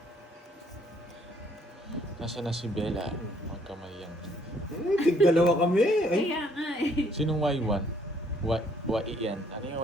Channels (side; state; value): both; normal; correlation 0.65